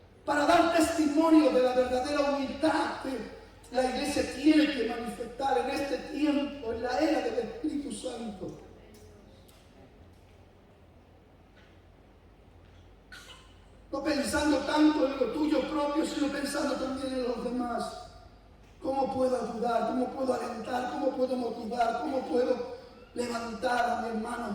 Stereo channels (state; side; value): identical; both; correlation 1.00